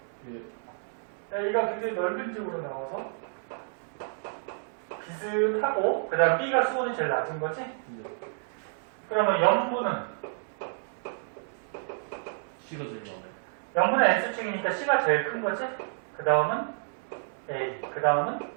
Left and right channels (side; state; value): left; silent; 58 dB below the other